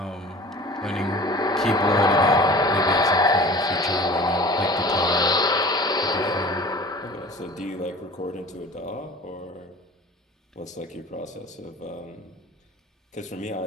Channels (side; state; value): both; normal; correlation 0.42